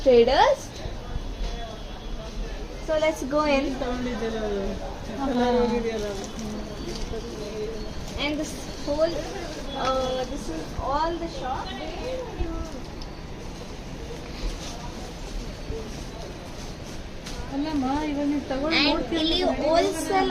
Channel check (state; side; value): identical; both; correlation 1.00